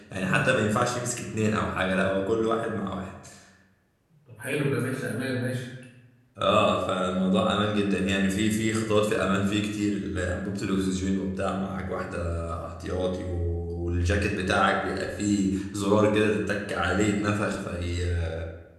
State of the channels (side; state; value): both; identical; correlation 1.00